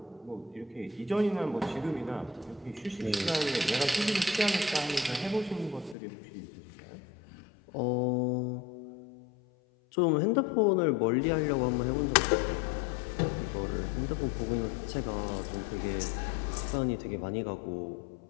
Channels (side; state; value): right; drops out; at 6.0 s